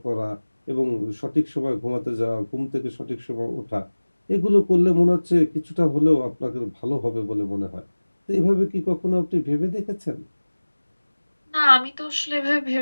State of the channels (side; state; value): both; inverted; correlation -1.00